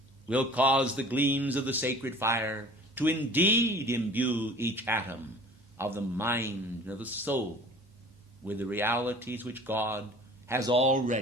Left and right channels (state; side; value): normal; both; correlation 0.45